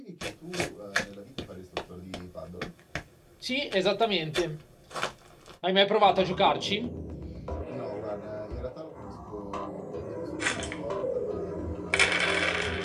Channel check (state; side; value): identical; both; correlation 1.00